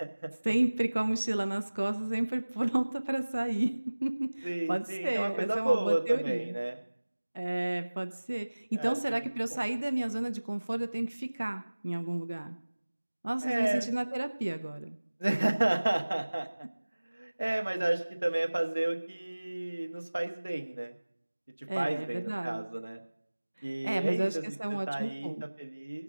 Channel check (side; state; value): both; inverted; correlation -1.00